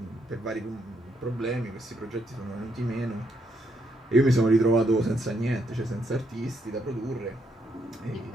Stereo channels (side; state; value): both; normal; correlation 0.75